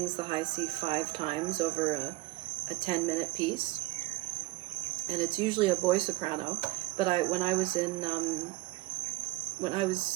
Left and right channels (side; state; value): left; quieter; 21.0 dB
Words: the high C 5 times over a 10-minute piece, and it's usually a boy soprano. But I